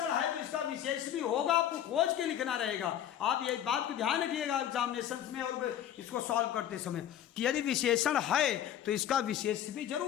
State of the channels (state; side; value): quieter; right; 10.8 dB